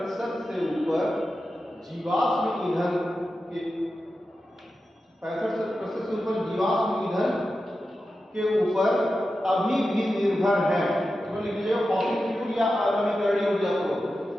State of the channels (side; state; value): both; normal; correlation 0.91